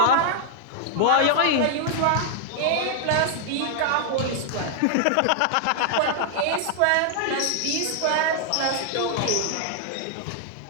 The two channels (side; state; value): both; different; correlation -0.01